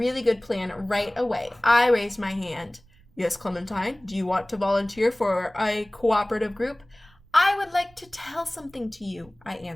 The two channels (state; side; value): noise; right; rumble, 29 dB below the sound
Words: good plan right away. I raised my hand. Yes, Clementine, do you want to volunteer for a cooperative group? I would like to tell something to you, I